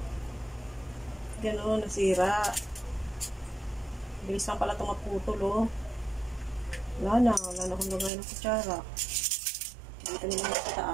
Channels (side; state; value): left; drops out; at 8.1 s